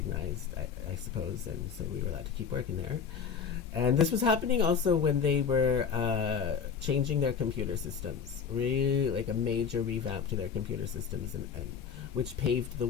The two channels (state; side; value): quieter; right; 6.6 dB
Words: I suppose. And so we were allowed to keep working there. And this was happening also when they were changing their computer systems, really like a major revamp to their computer systems, and which paved the